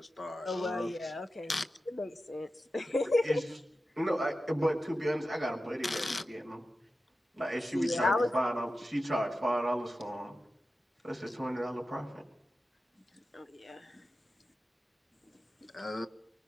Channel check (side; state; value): both; normal; correlation 0.93